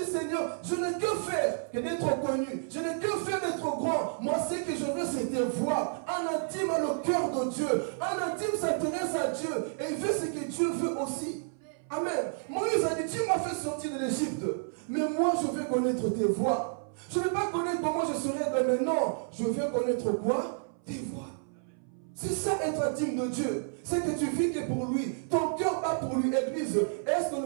Seigneur, je n'ai que faire que d'être connu. Je n'ai que faire d'être grand. Moi, ce que je veux, c'est tes voix. Un intime a le cœur de Dieu. Un intime s'intéresse à Dieu. Et il veut ce que Dieu veut aussi. Amen. Moïse a dit, tu m'as fait sortir de l'Égypte. Mais moi, je veux connaître tes voix. Je ne veux pas connaître comment je serai demain. Non, je veux connaître quoi? Tes voix. C'est ça être intime de Dieu. C'est que tu vis que pour lui. Ton cœur bat pour lui, Église. Est-ce que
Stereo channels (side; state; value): left; silent; 57 dB below the other